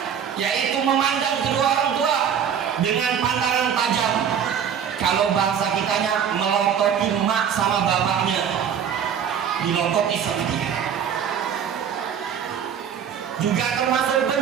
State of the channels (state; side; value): quieter; left; 8.1 dB